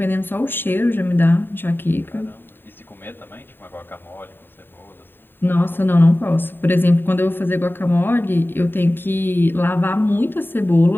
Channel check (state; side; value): late; right; 0.097 ms